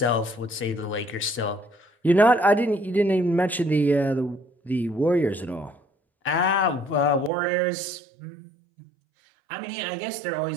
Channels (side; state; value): left; drops out; at 7.3 s